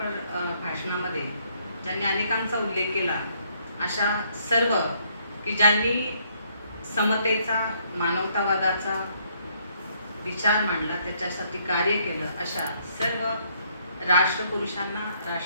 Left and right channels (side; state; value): both; inverted; correlation -0.68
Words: भाषणामध्ये ज्यांनी अनेकांचा उल्लेख केला, अशा सर्व की ज्यांनी समतेचा, मानवतावादाचा विचार मांडला, त्याच्यासाठी कार्य केलं, अशा सर्व राष्ट्रपुरुषांना,